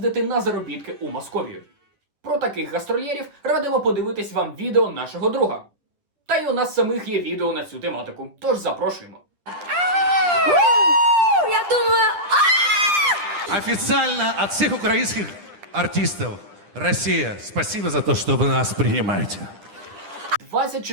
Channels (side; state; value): left; late; 10 ms